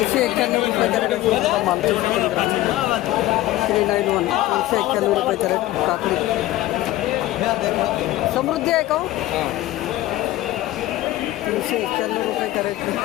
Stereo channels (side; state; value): right; quieter; 16.0 dB